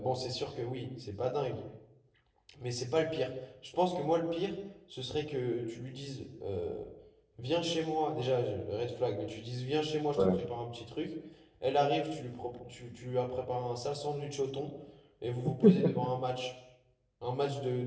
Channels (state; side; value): identical; both; correlation 1.00